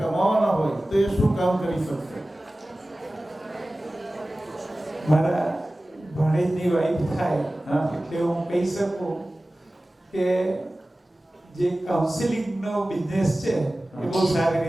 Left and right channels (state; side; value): normal; both; correlation 0.97